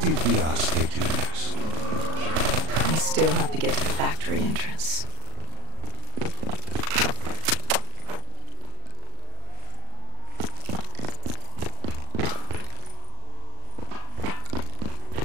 Diaz take you next? We still have to get to the factory entrance.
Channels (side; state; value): left; late; 38 ms